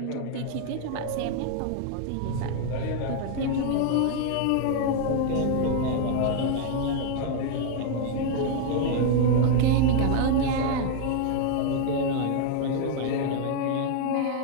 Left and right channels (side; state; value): both; different; correlation 0.00